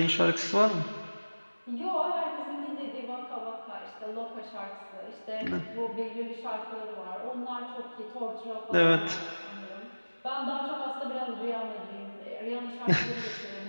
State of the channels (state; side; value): inverted; both; correlation -1.00